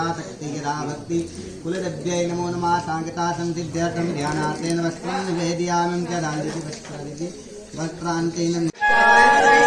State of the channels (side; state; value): both; identical; correlation 1.00